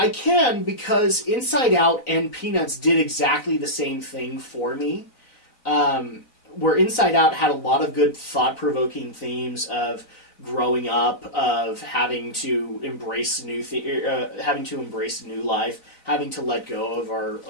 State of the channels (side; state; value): right; late; 3.9 ms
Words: can, because Inside Out and Peanuts did exactly the same thing for me. Where Inside Out had a lot of good thought-provoking themes of growing up, of having to embrace new life, having to let go